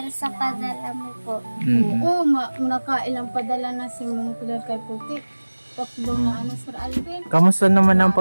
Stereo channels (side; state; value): both; inverted; correlation -1.00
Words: sa padala mo po. Mm. Oo, nakailang padala na si Ma'am Claire kay Puti. Tatlo na ano, Sir Alvin. Kamusta naman ang